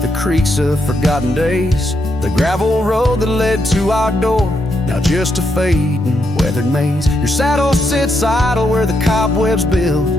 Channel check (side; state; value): both; normal; correlation 0.80